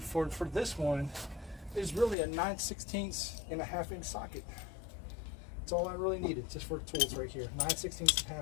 this one is really a 9/16 and a ½ inch socket. That's all I really needed, just for tools right here. 9/16 and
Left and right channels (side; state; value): right; drops out; at 2.1 s